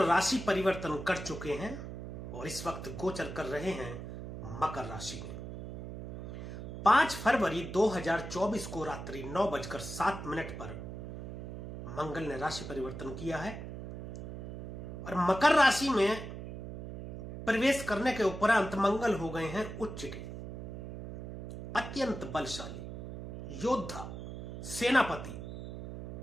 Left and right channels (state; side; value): noise; right; hum, 9 dB below the sound